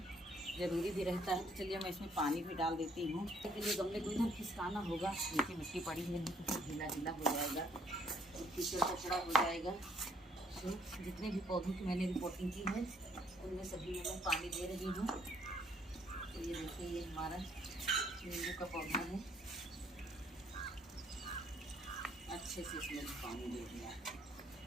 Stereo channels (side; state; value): both; normal; correlation 0.66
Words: ज़रूरी भी रहता है। तो चलिए मैं इसमें पानी भी डाल देती हूँ। इसके लिए गमले को इधर खिसकाना होगा, नीचे मिट्टी पड़ी है नहीं तो ढीला ढीला हो जाएगा, कीचड़ कचड़ा हो जाएगा। तो जितने भी पौधों की मैंने रिपोर्टिंग की है उनमें सभी में मैं पानी दे रही हूँ। तो ये देखिए, ये हमारा नींबू का पौधा है, अच्छे से इसमें पानी दे दिया।